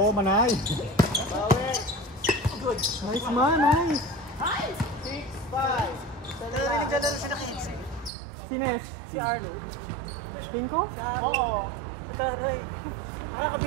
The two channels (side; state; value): left; drops out; at 8.1 s